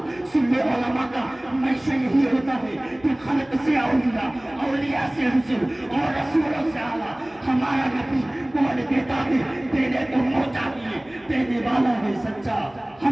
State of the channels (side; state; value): right; noise; hum, 30 dB below the sound